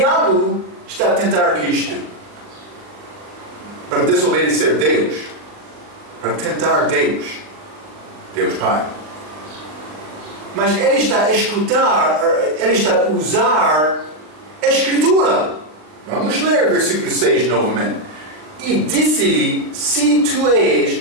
está a tentar Cristo para desobedecer Deus, para tentar Deus, Deus Pai. Mas ele está a escutar, ele está a usar a Escritura. Vamos ler versículo 6 novamente. E disse-lhe, se tu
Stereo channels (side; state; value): left; late; 39 ms